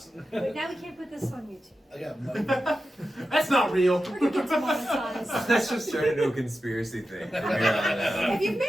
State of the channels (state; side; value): normal; both; correlation 0.91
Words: Wait, now we can't put this on YouTube. I got mud. That's not real. We're gonna get demonetized. That's just turned into a conspiracy thing from here on out. If you've made